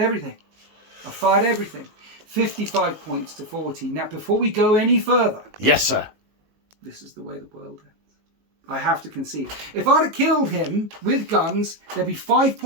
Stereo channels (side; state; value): left; late; 19 ms